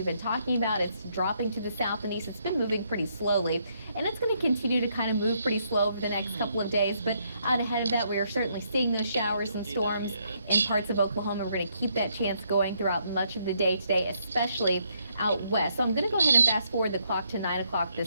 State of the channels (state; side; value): inverted; both; correlation -0.74